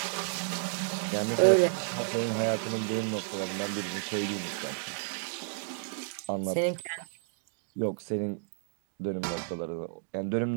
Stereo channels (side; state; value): left; silent; digital silence